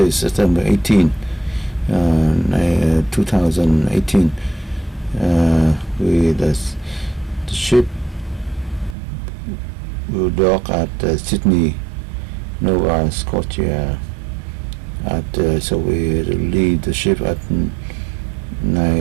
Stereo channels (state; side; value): drops out; left; at 9.0 s